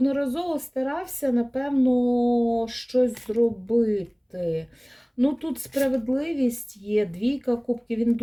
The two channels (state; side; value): identical; both; correlation 1.00